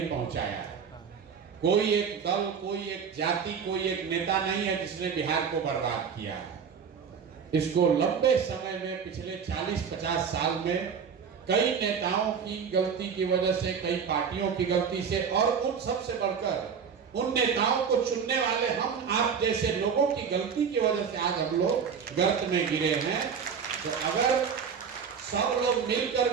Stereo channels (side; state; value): left; quieter; 6.7 dB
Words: पहुंचाया। कोई एक दल, कोई एक जाति, कोई एक नेता नहीं है जिसने बिहार को बर्बाद किया है। इसको लंबे समय में, पिछले 40-50 साल में कई नेताओं की गलती की वजह से, कई पार्टियों की गलती से, और उन सबसे बढ़कर उन नेताओं को चुनने वाले हम आप जैसे लोगों की गलती की वजह से आज हम लोग गर्त में गिरे हैं। तो अगर सब लोग मिलकर